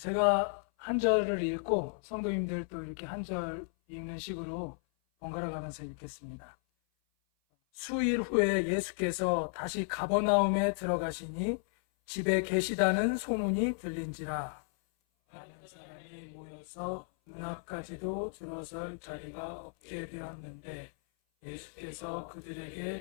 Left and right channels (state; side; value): silent; right; 55 dB below the other